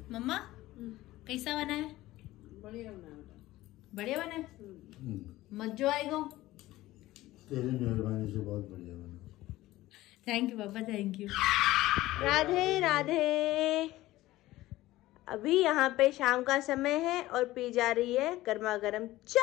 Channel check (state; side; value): quieter; right; 16.8 dB